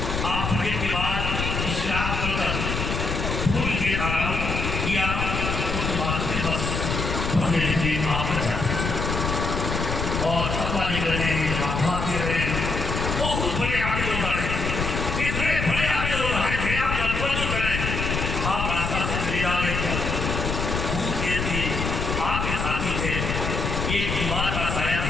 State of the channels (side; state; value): left; noise; rumble, 2 dB below the sound